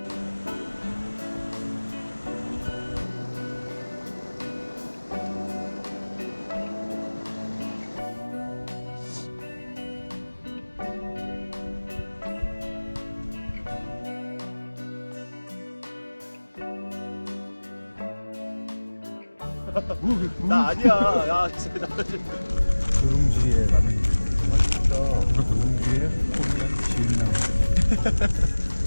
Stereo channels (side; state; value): both; inverted; correlation -1.00